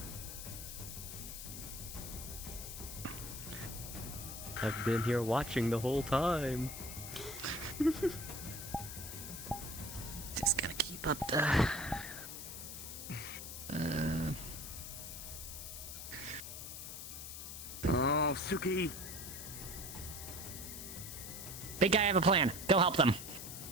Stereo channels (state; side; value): noise; left; hiss, 8 dB below the sound